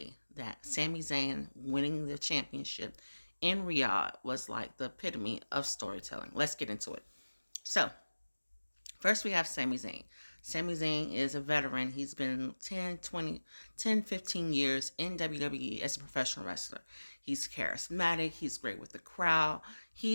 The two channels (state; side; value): inverted; both; correlation -1.00